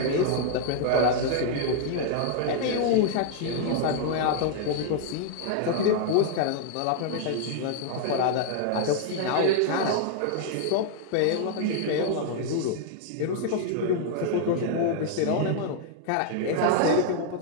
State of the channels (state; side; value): different; both; correlation -0.01